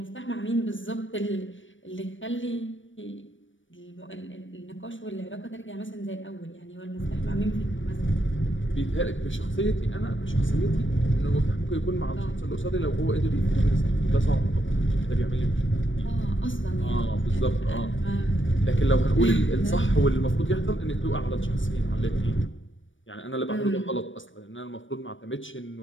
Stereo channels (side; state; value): right; late; 0.56 ms